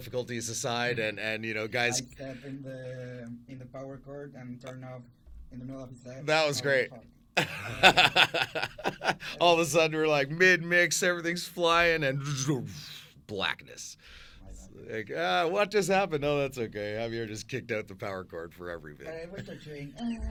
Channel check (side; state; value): both; identical; correlation 1.00